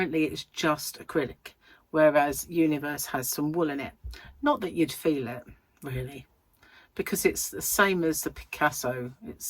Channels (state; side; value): identical; both; correlation 1.00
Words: it's just acrylic, whereas Universe has some wool in it. Not that you'd feel it, really, because it's the same as the Picasso.